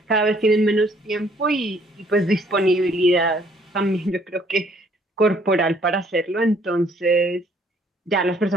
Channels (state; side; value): normal; both; correlation 0.63